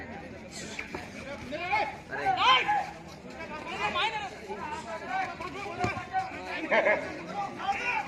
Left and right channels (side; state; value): both; identical; correlation 1.00